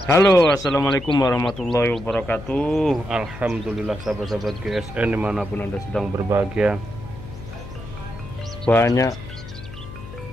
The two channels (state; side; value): noise; left; hum, 13 dB below the sound